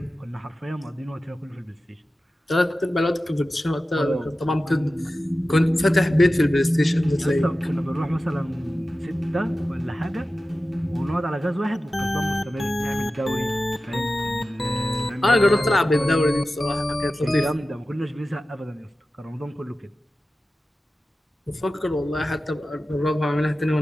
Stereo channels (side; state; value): both; normal; correlation 0.94